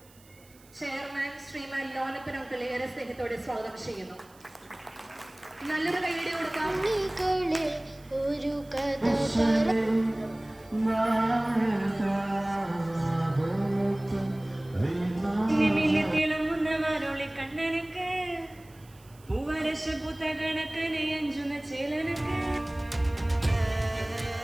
ചെയർമാൻ ശ്രീമാൻ ലോനപ്പൻ അങ്കിൾ ഏറെ സ്നേഹത്തോടെ സ്വാഗതം ചെയ്യുന്നു. നല്ലൊരു കൈയ്യടി കൊടുക്കാം. ഒരു കഥ തിളങ്ങുന്നവരോളി കണ്ണനക്ക് പൂവരശ പൂത്ത കണക്കനെ അഞ്ചുന്ന ചേലനക്ക്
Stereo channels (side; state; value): right; noise; hiss, 27 dB below the sound